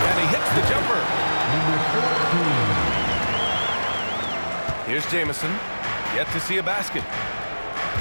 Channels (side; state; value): both; inverted; correlation -1.00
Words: and he hits the jumper. Here's Jamison, yet to see a basket.